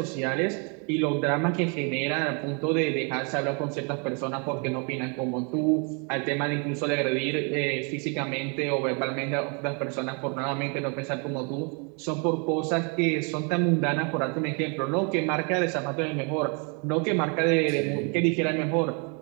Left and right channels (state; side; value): quieter; left; 35.9 dB